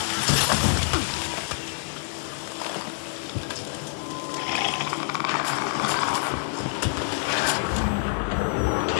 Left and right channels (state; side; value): silent; right; 61 dB below the other